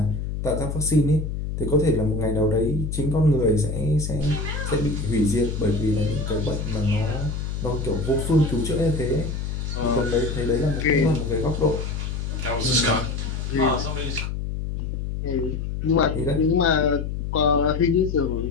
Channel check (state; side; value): noise; left; hum, 4 dB below the sound